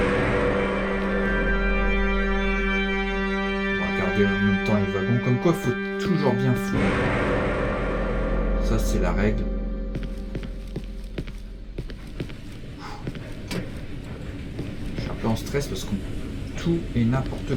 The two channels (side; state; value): both; identical; correlation 1.00